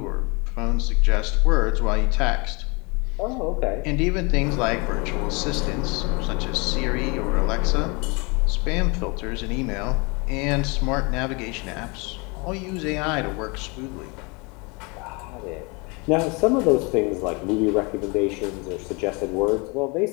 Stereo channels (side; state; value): right; quieter; 29.3 dB